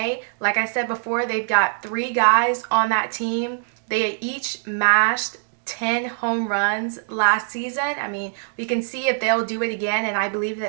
Like I said before, they've got 3 guys on that team. They each mashed 10 home runs last season. I mean, we can see if they'll do it again, and I believe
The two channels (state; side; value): silent; left; digital silence